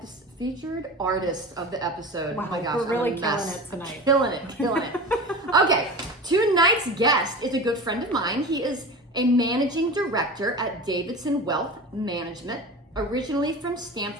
artist of the episode. Wow, oh my gosh, we're really I'm a killing mess. it tonight. Killing it. Okay, tonight's guest is a good friend of mine. He is a managing director at Davidson Wealth Management, originally from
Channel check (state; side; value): normal; both; correlation 0.32